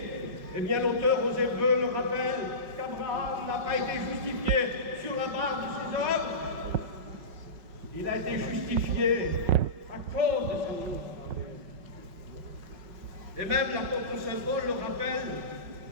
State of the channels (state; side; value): late; left; 5.4 ms